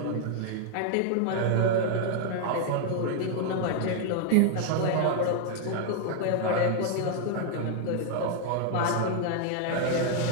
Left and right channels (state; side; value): different; both; correlation 0.00